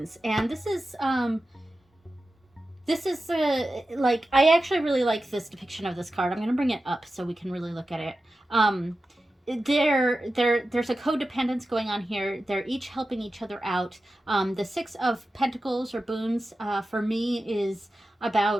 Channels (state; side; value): normal; both; correlation 0.93